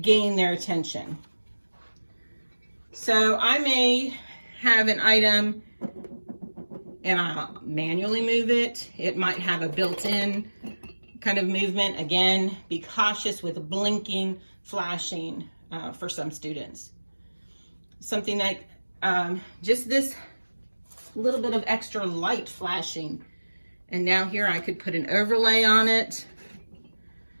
their attention. So I may have an item and I'll manually move it. It might have a built-in kind of movement. Again, be cautious with blinking, flashing for some students. Something like just this little bit of extra light flashing. And now here I could put an overlay on it.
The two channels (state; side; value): inverted; both; correlation -1.00